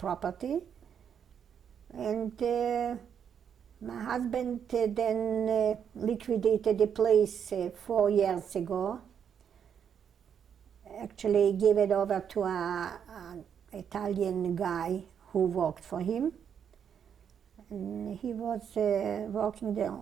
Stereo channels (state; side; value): quieter; left; 8.0 dB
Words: And my husband then liquidated the place 4 years ago. Actually gave it over to an Italian guy who worked for him. And he was working